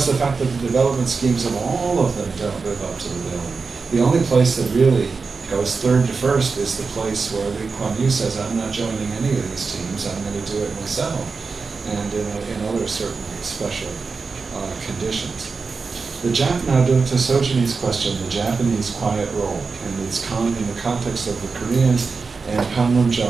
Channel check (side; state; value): left; quieter; 4.7 dB